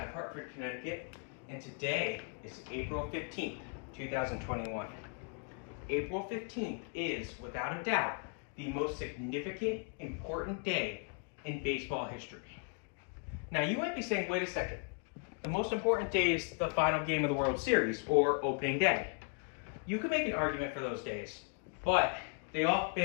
of Hartford, Connecticut, and today is April 15th, 2021. April 15th is, without a doubt, the most significant, important day in baseball history. Now, you might be saying, wait a second, the most important day is the final game of the World Series, or opening day. You can make an argument for those days, but they all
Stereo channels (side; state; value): right; quieter; 38.1 dB